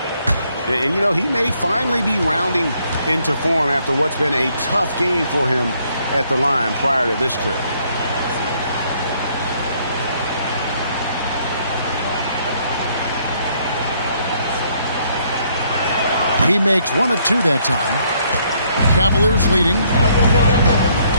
And, you know, he may finally be rounding into form after what's been a tough game for him at the line prior to this trip. He makes 1 of 2 that time. Cavaliers leading.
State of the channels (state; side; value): inverted; both; correlation -0.68